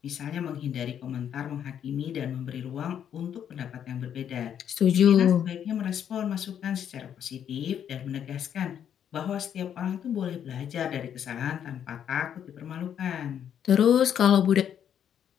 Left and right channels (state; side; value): quieter; right; 9.1 dB